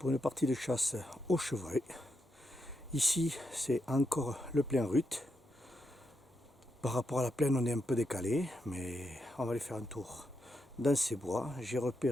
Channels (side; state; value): both; normal; correlation 0.84